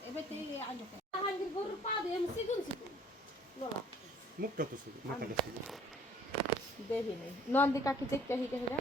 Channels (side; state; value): both; normal; correlation 0.56